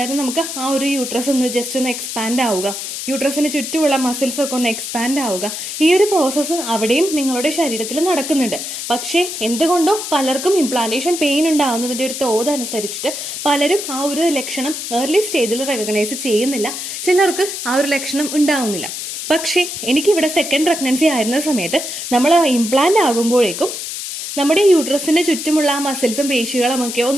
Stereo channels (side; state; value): left; noise; hiss, 6 dB below the sound